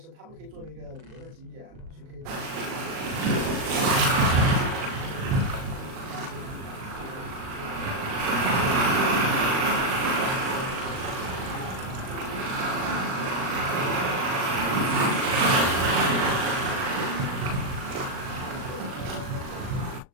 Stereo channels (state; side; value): late; left; 38 ms